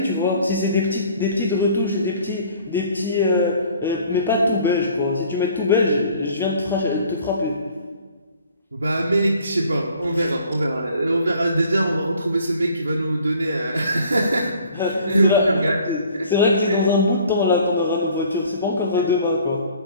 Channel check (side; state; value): both; inverted; correlation -0.54